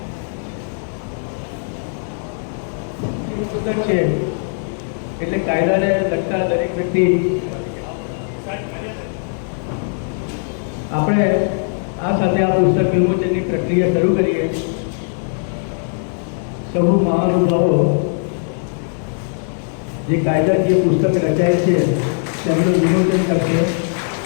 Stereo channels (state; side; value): silent; right; digital silence